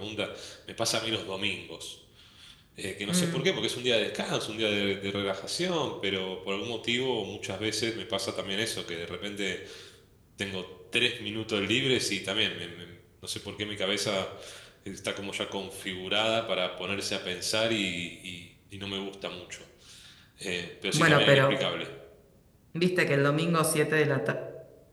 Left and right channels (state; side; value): identical; both; correlation 1.00